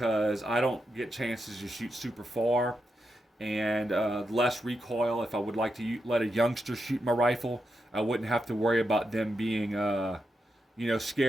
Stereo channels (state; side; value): normal; both; correlation 0.85